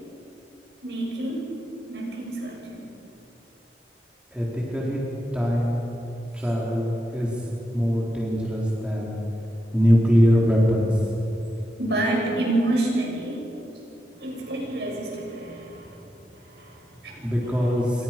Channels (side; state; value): both; normal; correlation 0.86